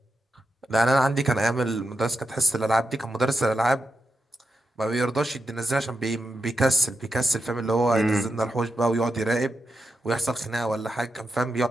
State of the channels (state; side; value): normal; both; correlation 0.87